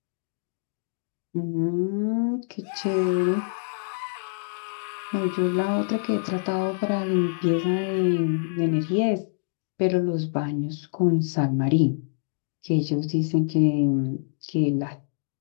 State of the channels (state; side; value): silent; right; digital silence